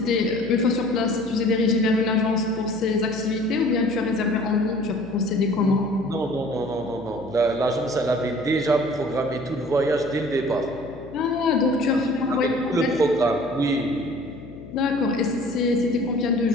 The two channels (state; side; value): noise; left; hum, 17 dB below the sound